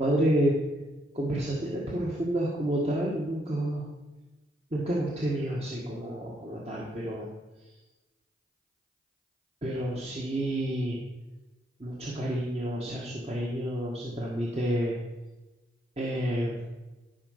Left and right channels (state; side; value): normal; both; correlation 0.74